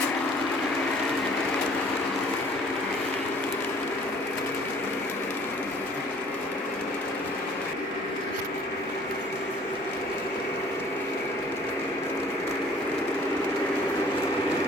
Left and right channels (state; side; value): normal; both; correlation 0.54